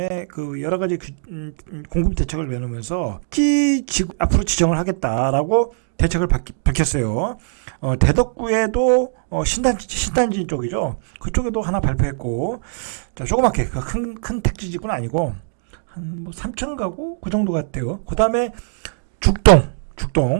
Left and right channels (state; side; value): silent; left; digital silence